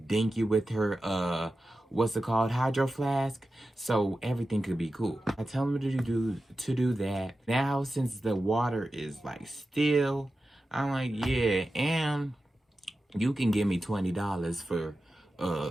you with her what's it called, hydro flask, so everything could be cool. I tell him to do that. Now since the water is like still, I'm like, yeah, and you can give me $20 for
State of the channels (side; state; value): both; normal; correlation 0.93